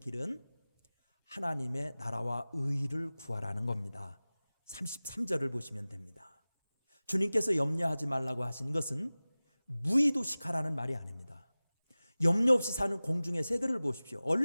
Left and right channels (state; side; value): inverted; both; correlation -0.98